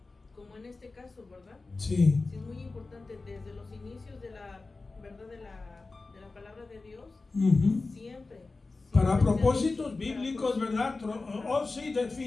como en este caso, ¿verdad? sí. Sí es muy importante desde los inicios de la verdad de la palabra de Dios, siempre. Para propósitos bíblicos, ¿verdad? Oh, sí,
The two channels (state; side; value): quieter; right; 3.6 dB